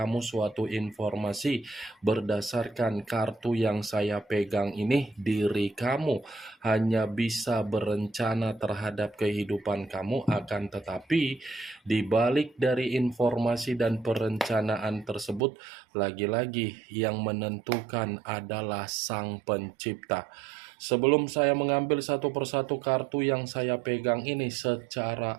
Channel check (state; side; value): drops out; left; at 15.4 s